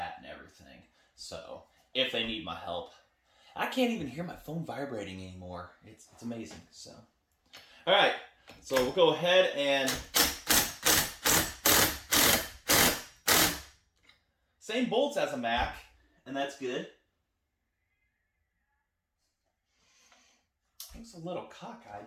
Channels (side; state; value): both; identical; correlation 1.00